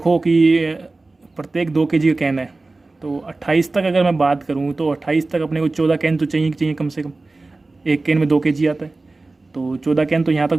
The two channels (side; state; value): left; quieter; 3.3 dB